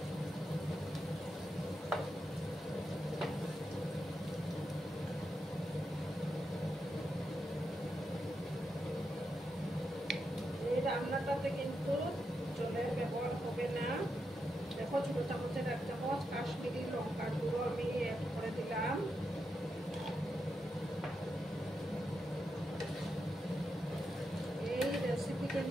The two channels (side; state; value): both; normal; correlation 0.85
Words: রান্নাটাতে কিন্তু জলের ব্যবহার হবে না। দেখো ছোট চামচের 1 চামচ কাশ্মীরি লঙ্কার গুঁড়ো আমি অ্যাড করে দিলাম। এই রেসিপি